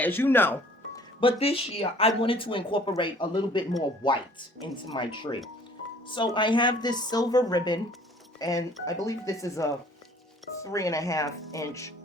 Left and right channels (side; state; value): both; normal; correlation 0.54